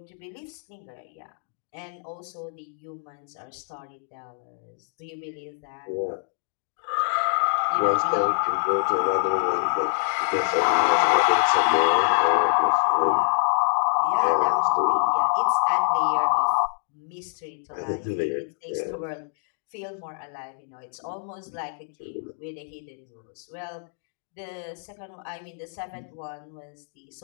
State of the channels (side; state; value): right; silent; digital silence